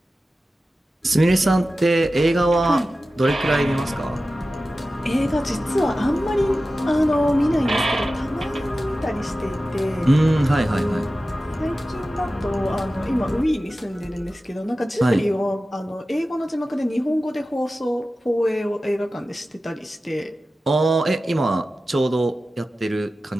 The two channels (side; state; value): both; normal; correlation 0.95